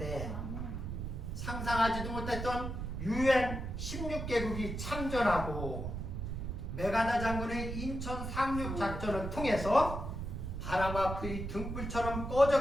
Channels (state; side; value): noise; right; rumble, 5 dB below the sound